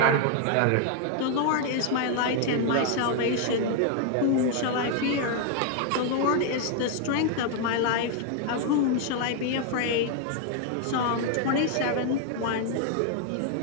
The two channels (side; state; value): both; different; correlation 0.00